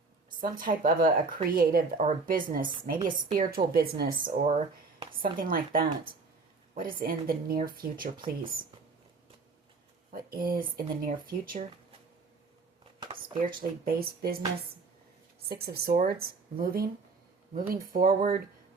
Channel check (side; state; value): left; quieter; 4.1 dB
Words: some type of a creative or a business, maybe a spiritual business or something like that. What is in the near future, please? What is in the near future? Spiritually based business. Six of Swords, moving forward,